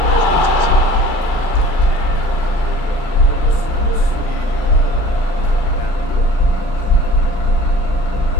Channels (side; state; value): right; late; 38 ms